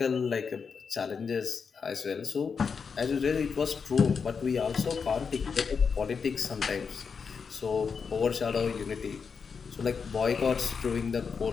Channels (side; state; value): right; quieter; 5.8 dB